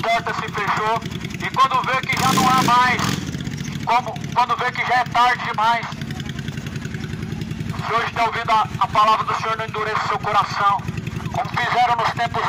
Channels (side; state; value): both; identical; correlation 1.00